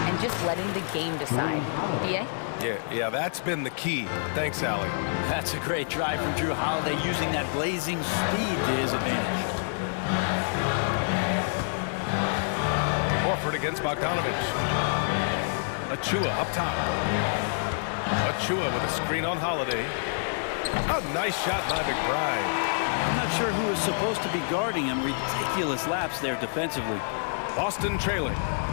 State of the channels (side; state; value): right; silent; digital silence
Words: and just letting the game decide. BA? Yeah, that's been the key. Thanks, Allie. That's a great drive from Drew Holiday, using that blazing speed to his advantage. Horford against Bogdanovich. Achua up top. Achua with a screen on Holiday. A nice shot by McBride. I'm not sure who is supposed to be guarding him. Ridiculous lapse there defensively. Boston trailing.